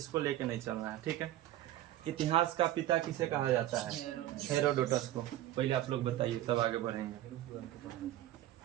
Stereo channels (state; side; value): quieter; left; 13.9 dB